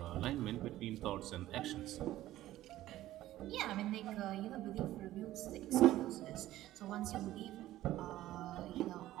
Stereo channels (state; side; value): quieter; left; 14.7 dB